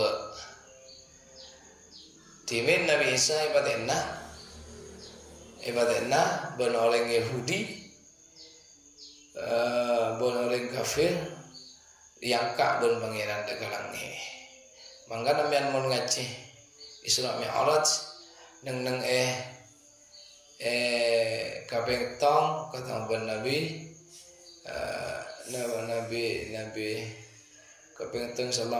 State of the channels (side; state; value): both; identical; correlation 1.00